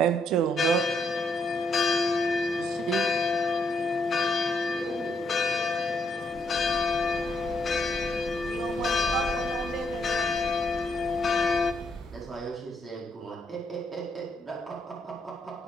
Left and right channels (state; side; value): normal; both; correlation 0.75